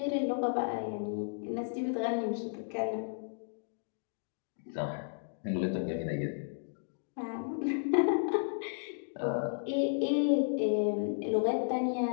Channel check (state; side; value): silent; right; digital silence